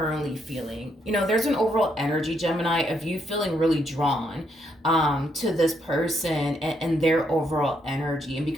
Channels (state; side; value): normal; both; correlation 0.75